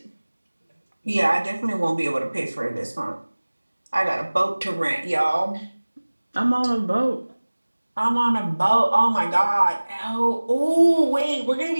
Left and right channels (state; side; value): inverted; both; correlation -1.00